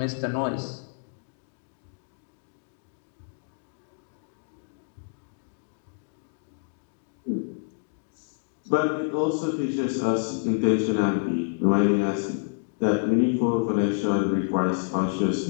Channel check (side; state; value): right; silent; digital silence